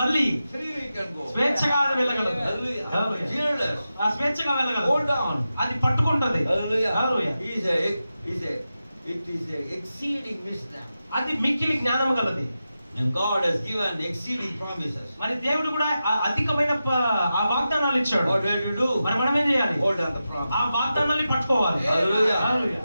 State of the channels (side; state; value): both; inverted; correlation -0.91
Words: freely can go. స్వేచ్ఛగా అది వెళ్ళగలదు. Hallelujah. Hallelujah. Fearless. ఆ స్వేచ్ఛగా వెళ్ళగలదు. Hold on. అది పట్టుకుంటది. Hallelujah. Hallelujah. It is a exceeding wisdom. అది మిక్కిలి జ్ఞానం గలది. And God has given exceeding promises. మరి దేవుడు కూడా అధికమైన ఆ వాగ్దానాలు ఇచ్చాడు. What do you do? మరి మనం ఏం చేయాలి? Hold on the promise. ఆ వాగ్దానాన్ని పట్టుకోవాలి. Hallelujah. Hallelujah.